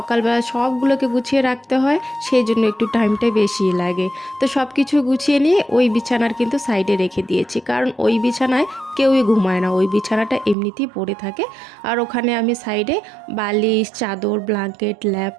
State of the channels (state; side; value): drops out; left; at 10.6 s